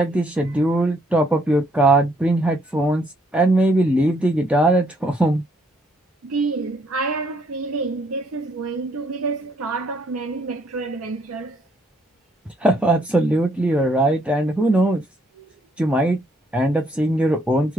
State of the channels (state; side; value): normal; both; correlation 0.69